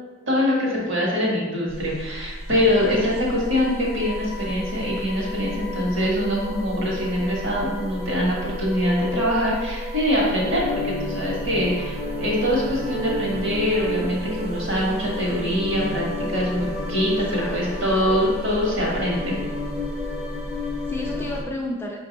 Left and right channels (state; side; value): normal; both; correlation 0.37